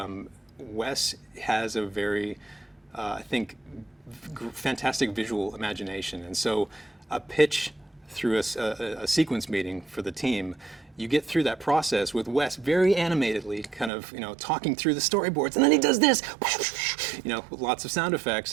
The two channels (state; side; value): drops out; left; at 13.9 s